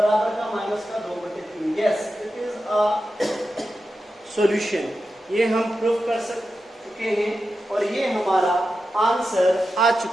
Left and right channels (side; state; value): both; normal; correlation 0.91